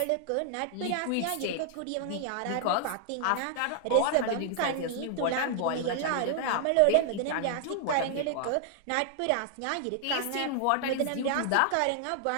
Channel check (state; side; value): different; both; correlation 0.00